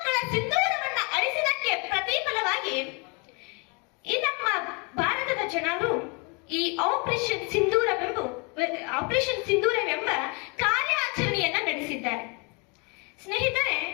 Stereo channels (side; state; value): right; quieter; 32.2 dB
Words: ಸಿಂಧೂರವನ್ನ ಅಳಿಸಿದಕ್ಕೆ ಪ್ರತಿಫಲವಾಗಿ ಈ ನಮ್ಮ ಭಾರತದ ಜನರು ಈ ಆಪರೇಷನ್ ಸಿಂಧೂರವೆಂಬ ಕಾರ್ಯಾಚರಣೆಯನ್ನ ನಡೆಸಿದ್ದಾರೆ. ಸ್ನೇಹಿತರೆ,